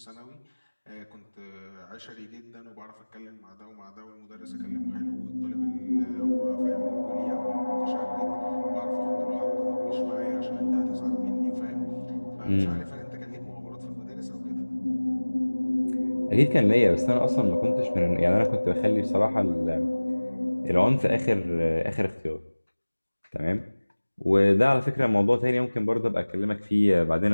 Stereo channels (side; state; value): both; inverted; correlation -1.00